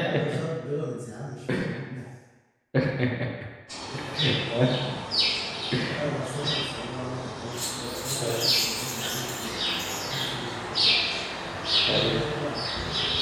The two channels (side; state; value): both; identical; correlation 1.00